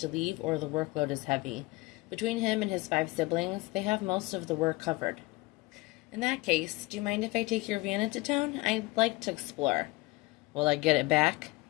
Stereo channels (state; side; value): quieter; right; 22.1 dB